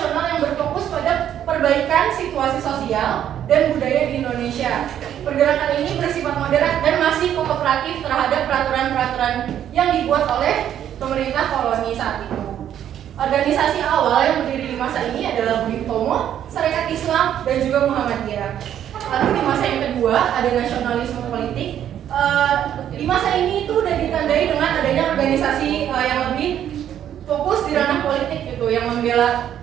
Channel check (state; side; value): quieter; left; 10.3 dB